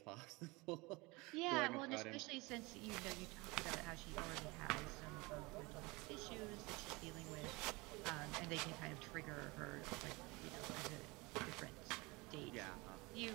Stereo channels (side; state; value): left; quieter; 24.6 dB